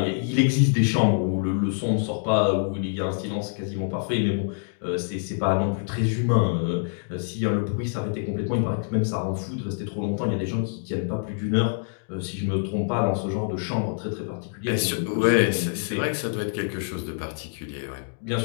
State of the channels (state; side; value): silent; right; digital silence